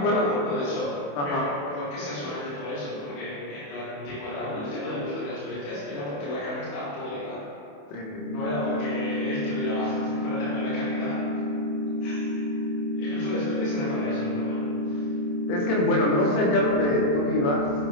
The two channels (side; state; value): right; late; 28 ms